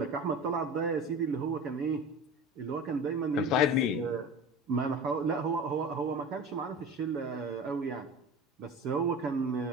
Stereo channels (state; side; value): normal; both; correlation 0.33